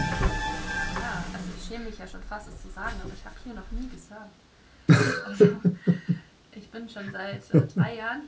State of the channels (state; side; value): identical; both; correlation 1.00